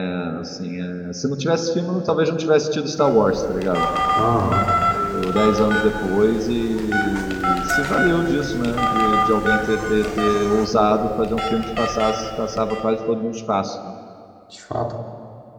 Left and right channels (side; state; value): both; identical; correlation 1.00